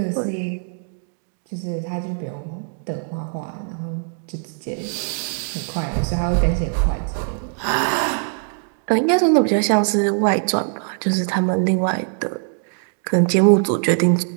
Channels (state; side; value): silent; left; 63 dB below the other